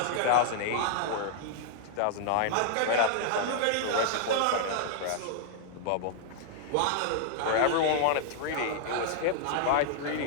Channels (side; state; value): both; different; correlation -0.01